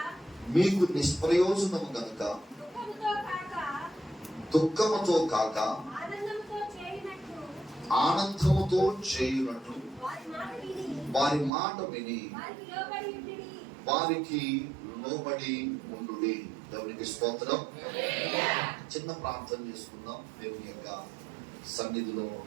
మీకు నిష్ప్రయోజనము గనుక దుఃఖముతో కాక ఆనందముతో చేయునట్లు వారి మాట విని వారికి లోబడి ఉండుడి. దేవునికి స్తోత్రం. చిన్న ప్రార్థన చేసుకుందాం. దేవుని యొక్క సన్నిధిలో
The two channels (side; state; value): left; drops out; at 11.5 s